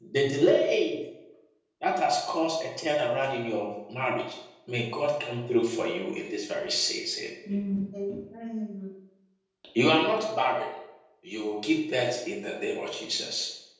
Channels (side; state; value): both; identical; correlation 1.00